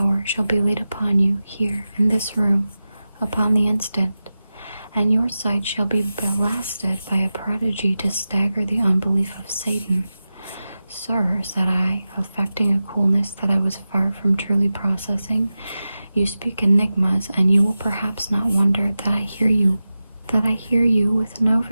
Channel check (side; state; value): both; inverted; correlation -0.94